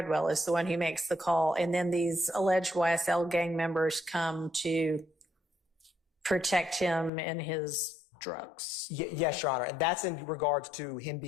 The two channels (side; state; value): right; drops out; at 7.1 s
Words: is the one who makes the call. And then these alleged YSL gang members come to protect him and his drugs. Yes, Your Honor. And that's in regards to him